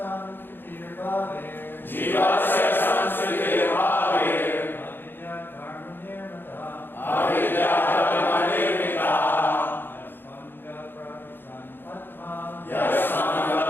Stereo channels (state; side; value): late; right; 0.099 ms